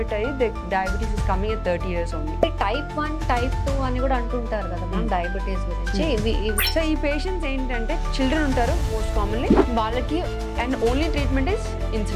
అయ్యి diabetes is coming at 30 years only. Type 1 type 2 అని కూడా అంటుంటారు కదా మనం డయాబెటీస్ గురించి. సో ఈ పేషెంట్స్ ఏంటంటే చిల్డ్రన్ ఉంటారు మోస్ట్ కామన్లీ, వాళ్ళకి and only treatment is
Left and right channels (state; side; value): identical; both; correlation 1.00